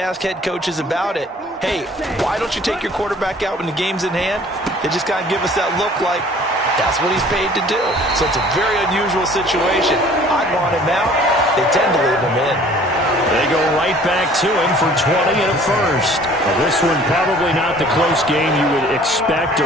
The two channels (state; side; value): normal; both; correlation 0.52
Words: head coaches about it, hey, why don't you take your quarterback out when the game's in hand? They just kind of give us that look like, That's what he's paid to do. So it's a very unusual situation. I'd want him out. They tend to leave him in. They go right back to him for 20 and a first. Well, this one probably not the close game you would expect